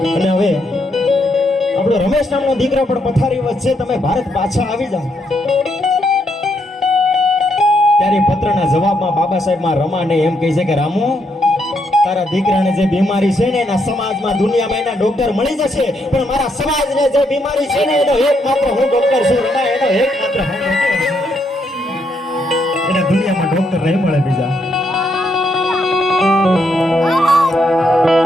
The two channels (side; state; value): both; normal; correlation 0.76